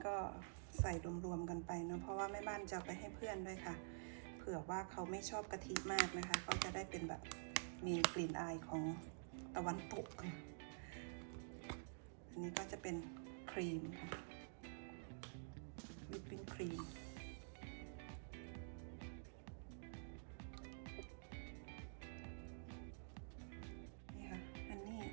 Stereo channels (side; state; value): left; silent; digital silence